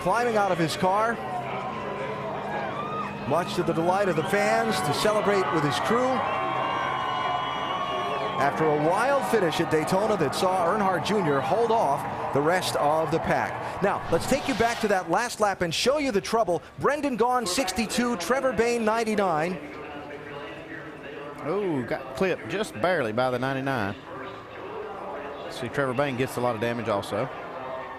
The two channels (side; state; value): both; identical; correlation 1.00